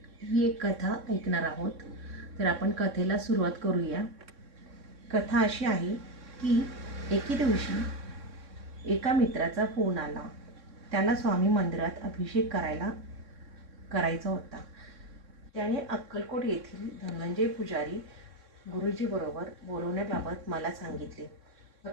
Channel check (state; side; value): late; left; 3.6 ms